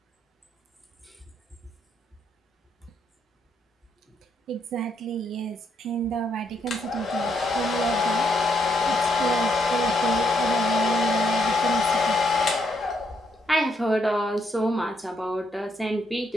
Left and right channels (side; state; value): both; normal; correlation 0.75